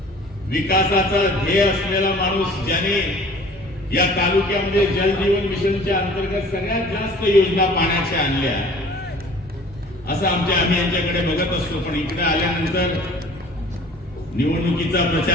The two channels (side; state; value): both; normal; correlation 0.48